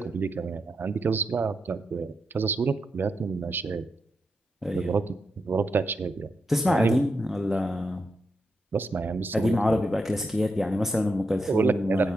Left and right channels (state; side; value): normal; both; correlation 0.85